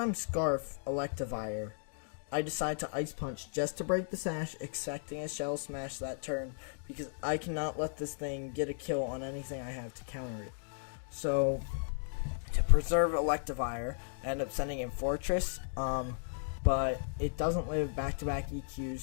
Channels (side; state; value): right; silent; digital silence